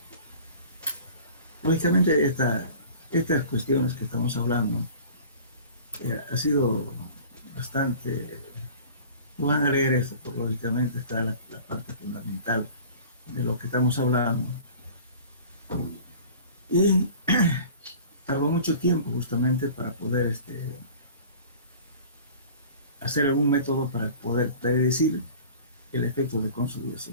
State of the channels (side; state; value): both; inverted; correlation -0.43